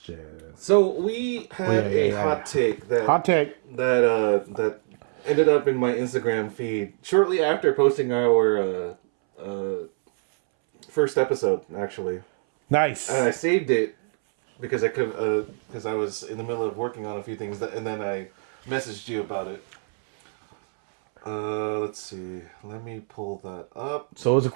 So we had a hot take that Hot take. that ended up in my Instagram feed shortly after posting our first episode. Actually, Nice. I saved it because I was in the middle of working on a few things and then I messaged you about it. Let's see. Let me pull that up. So it was a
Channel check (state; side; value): silent; left; 62 dB below the other